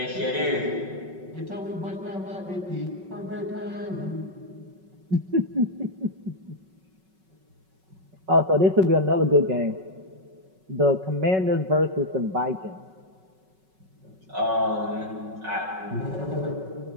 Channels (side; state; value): left; late; 5.3 ms